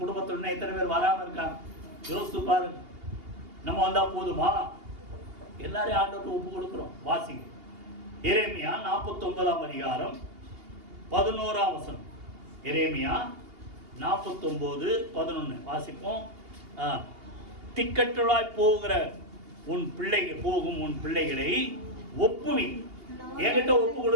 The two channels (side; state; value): left; late; 2.8 ms